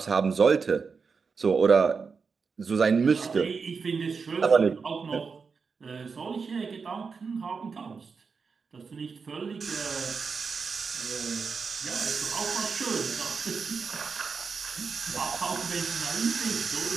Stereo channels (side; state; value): left; quieter; 5.2 dB